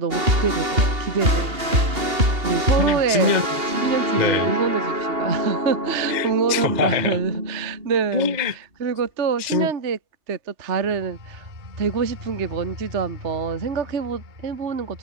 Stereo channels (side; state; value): left; late; 2.8 ms